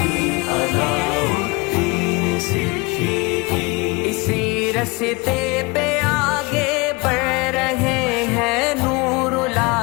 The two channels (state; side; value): quieter; right; 25.9 dB